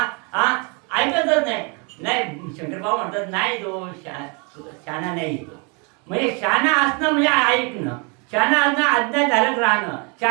ऐकतच नाही. नाही, शंकर बाबा म्हणतात नाही तो शहाणा नाही. तो म्हणजे शहाणा असणं म्हणजे ऐकणं, शहाणा असणं आज्ञाधारक राहणं,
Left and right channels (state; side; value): quieter; left; 32.8 dB